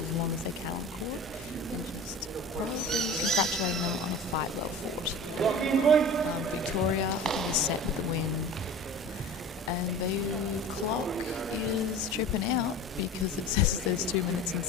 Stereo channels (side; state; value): both; normal; correlation 0.37